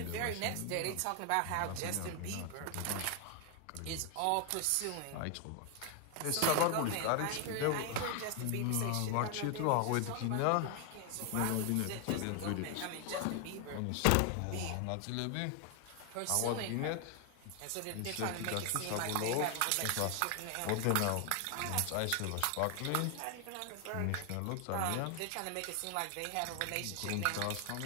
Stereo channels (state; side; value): different; both; correlation 0.00